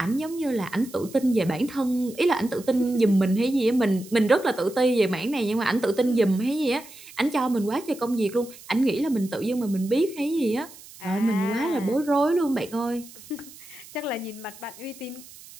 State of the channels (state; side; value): noise; right; hiss, 19 dB below the sound